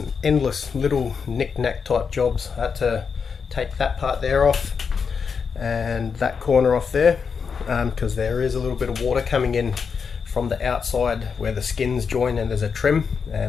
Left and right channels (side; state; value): right; quieter; 5.9 dB